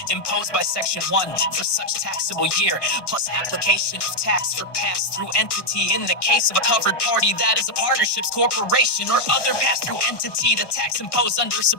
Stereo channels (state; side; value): late; right; 1.2 ms